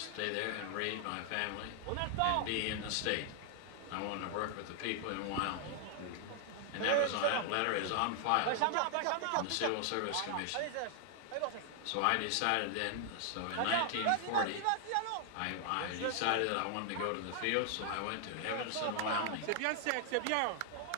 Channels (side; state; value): both; different; correlation 0.00